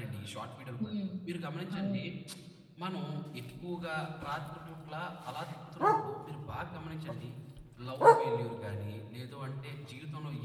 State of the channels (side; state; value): both; identical; correlation 1.00